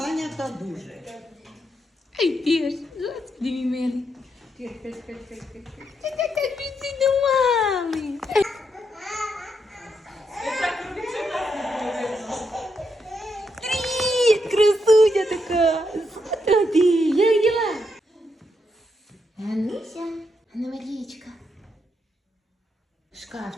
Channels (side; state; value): both; normal; correlation 0.80